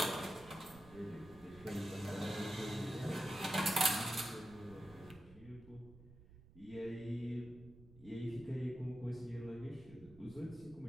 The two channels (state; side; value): noise; right; rumble, 19 dB below the sound